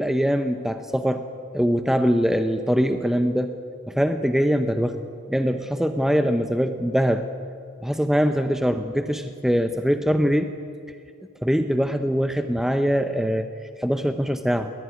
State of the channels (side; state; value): both; normal; correlation 0.93